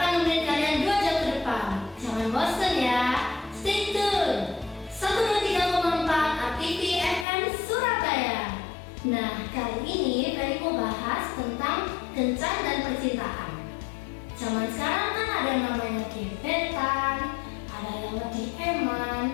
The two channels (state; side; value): drops out; right; at 7.2 s